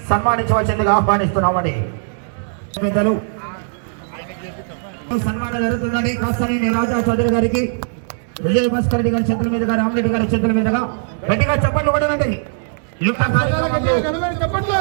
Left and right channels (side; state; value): left; silent; digital silence